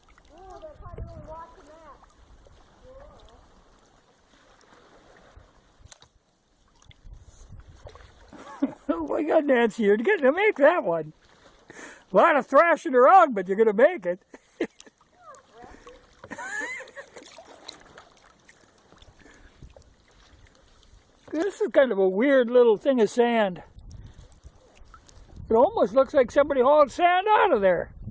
Ooh, they're probably really watching that. Oh my God, Nancy, you're getting to make that one. A lot of thrashing around, but you're going to make it. This is kind of a weird little thing of sand. It almost looks like somebody hauled sand out of there.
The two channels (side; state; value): both; identical; correlation 1.00